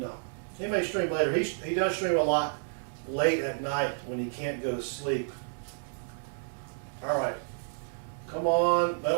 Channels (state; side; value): silent; left; digital silence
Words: He may stream later. He does stream a lot late at night when he can't go to sleep. All right. Come on,